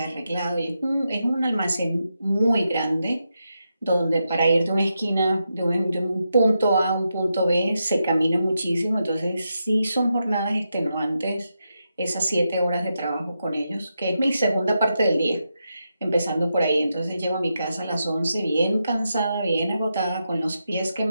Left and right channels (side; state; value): both; inverted; correlation -0.86